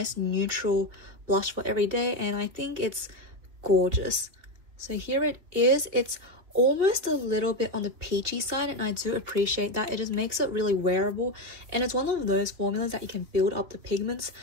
neutral blush for every day and I think it's gorgeous. So here it is. It's almost a little bit on the peachy side and I do appreciate that. It just makes it really wearable and it's one of those formulas that you can build up the pigments,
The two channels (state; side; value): late; left; 3.1 ms